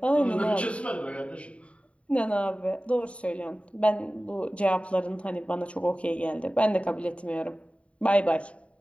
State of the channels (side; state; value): right; late; 0.063 ms